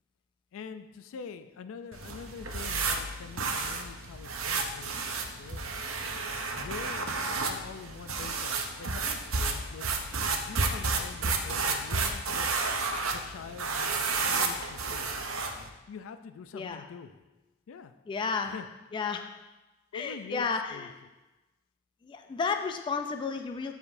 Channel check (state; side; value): normal; both; correlation 0.11